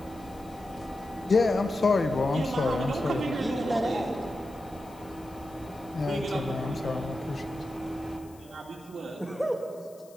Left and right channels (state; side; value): noise; left; hiss, 26 dB below the sound